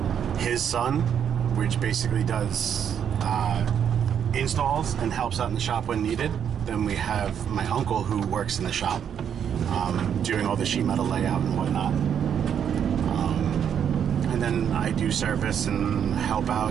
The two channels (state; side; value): quieter; left; 8.5 dB